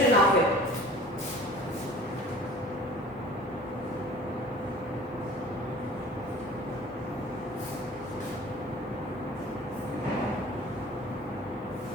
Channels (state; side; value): normal; both; correlation 0.46